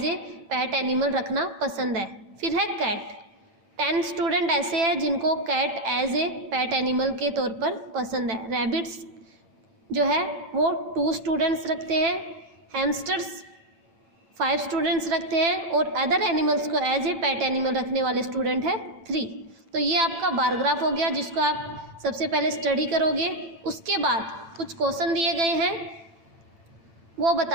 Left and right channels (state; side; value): late; left; 8.9 ms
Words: a pet animal रखना पसंद है। फिर है कैट, 10 स्टूडेंट ऐसे हैं जिनको cat as a pet animal के तौर पर पसंद है। रैबिट्स जो है वो 2 स्टूडेंट्स रखते हैं। हैमस्टर्स 5 स्टूडेंट्स रखते हैं और अदर एनिमल्स को एज ए पेट एनिमल रखने वाले स्टूडेंट है 3। तो ये आपका बार ग्राफ हो गया, जिसको आप सबसे पहले स्टडी करोगे। उसके बाद कुछ क्वेश्चन दिए गए हैं वो